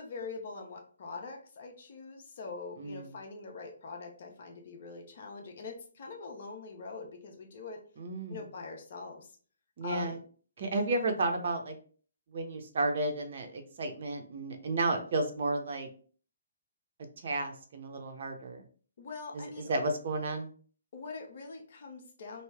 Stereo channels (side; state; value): both; inverted; correlation -0.64